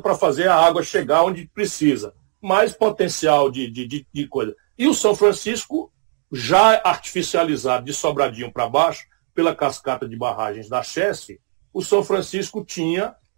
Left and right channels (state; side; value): silent; left; digital silence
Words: para fazer a água chegar onde precisa. Mais potencial de coisa. E o São Francisco, já artificializado de Sobradinho para baixo, pela cascata de barragens da Chesse, o São Francisco tinha